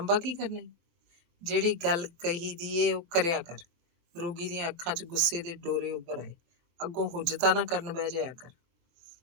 ਕੀ ਕਰਨਾ? ਜਿਹੜੀ ਗੱਲ ਕਹੀ ਦੀ ਏ ਉਹ ਕਰਿਆ ਕਰ। ਰੋਗੀ ਦੀਆਂ ਅੱਖਾਂ 'ਚ ਗੁੱਸੇ ਦੇ ਡੋਰੇ ਉੱਭਰ ਆਏ। ਅੱਗੋਂ ਹੁਜਤਾਂ ਨਾ ਕਰਨ ਬਹਿ ਜਾਇਆ ਕਰ।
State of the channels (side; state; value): left; late; 23 ms